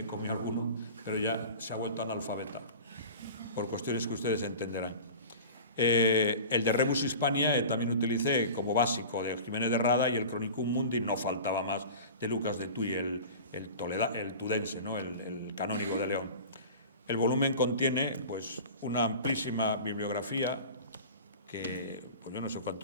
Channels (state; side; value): inverted; both; correlation -0.36